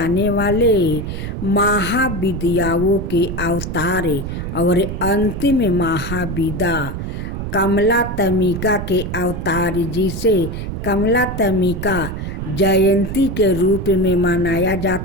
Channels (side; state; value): right; noise; rumble, 5 dB below the sound